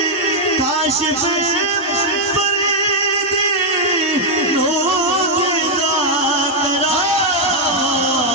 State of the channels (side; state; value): both; normal; correlation -0.01